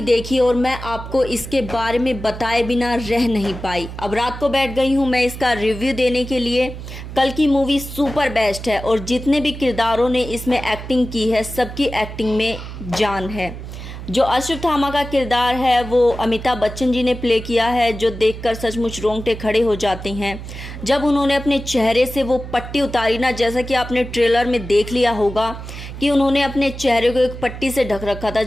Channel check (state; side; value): noise; right; hum, 10 dB below the sound